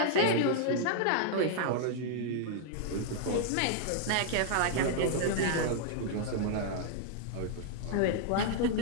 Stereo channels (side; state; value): both; different; correlation -0.01